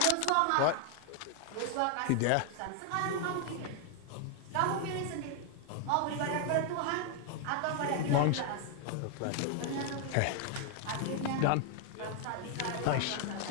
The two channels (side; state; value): both; different; correlation 0.00